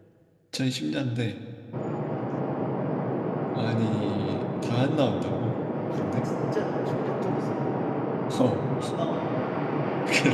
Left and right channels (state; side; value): identical; both; correlation 1.00